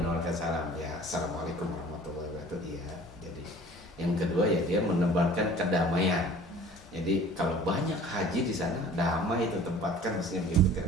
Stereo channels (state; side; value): normal; both; correlation 0.47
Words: menebarkan salam. Ya, assalamualaikum warahmatullahi wabarakatuh. Iya. Jadi yang kedua ya dia menebarkan kedamaian. Jadi kalau banyak haji di sana, damai itu tempatkan, maksudnya begitu